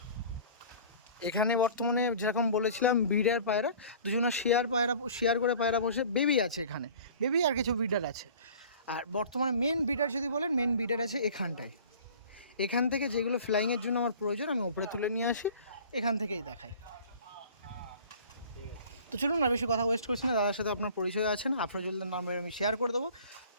এখানে বর্তমানে যেরকম বলেছিলাম ব্রিডার পায়রা, দুজনা শেয়ার করে পায়রা বসে, বেবি আছে এখানে, বেবি আর কিছু ব্রিডার আছে। আর বর্তমানে মেন ব্রিডার যদি বলেন, মেন ব্রিডার আছে এখানটায়। এখান থেকে যেগুলো ফ্লাইংয়ের জন্য আমার প্রয়োজন আমি ওপরে তুলে নিয়ে আসি, এখান থেকেই দেখাই। তো চলুন না বেশি কথা ওয়েস্ট করছি না, দাদার সাথে আপনার পরিচয় আছে না, আফরাজুল্লার নাম্বার আমি শেয়ার করে দেবো।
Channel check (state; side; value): inverted; both; correlation -0.45